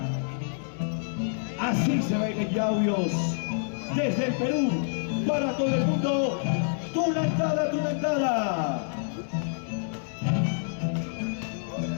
Así se baila en Yauyos, desde el Perú, para todo el mundo. Tunantada, tunantada.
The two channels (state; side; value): silent; right; 56 dB below the other